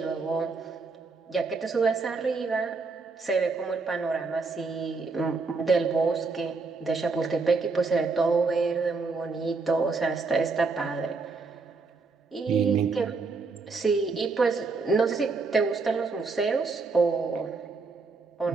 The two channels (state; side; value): quieter; left; 4.2 dB